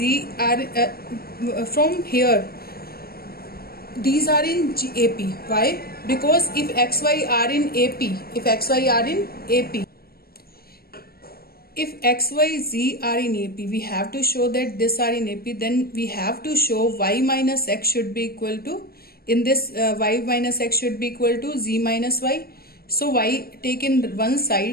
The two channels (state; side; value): late; right; 0.44 ms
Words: are from here, these are in AP. Why? Because if x, y are in AP, if x, y are in AP, if x, y, z are in AP, we have to show that this are in AP. Then we have to show y minus x should be equal to, in this y minus x should be equal to z minus y. So y take in one